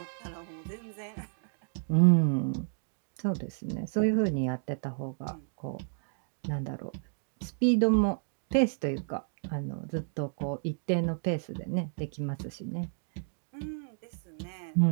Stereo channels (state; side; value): silent; left; digital silence